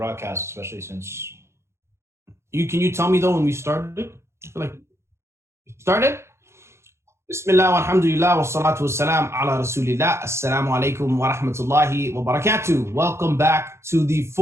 especially since Can you tell me though when we started? I feel like started. Bismillah walhamdulillah wa salatu wassalam ala rasulillah. Assalamu alaikum wa rahmatullahi wa barakatuh. Welcome back to the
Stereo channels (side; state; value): left; late; 0.13 ms